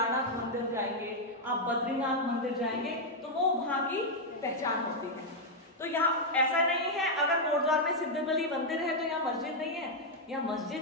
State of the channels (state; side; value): normal; both; correlation -0.01